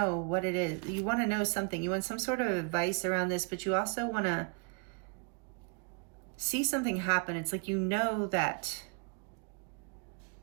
what it is. You want to know something. You want some sort of advice around this, but you also want to see something happen. It's like you know that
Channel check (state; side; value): quieter; left; 32.8 dB